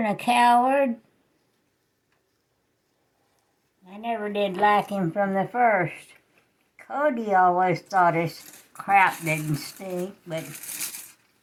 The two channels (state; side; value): identical; both; correlation 1.00